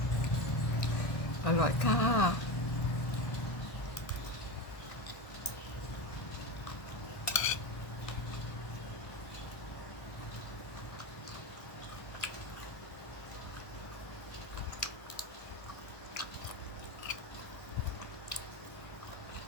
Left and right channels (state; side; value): late; right; 1.9 ms